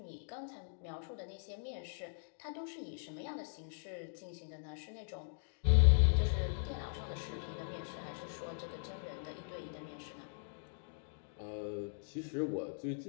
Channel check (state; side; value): silent; right; digital silence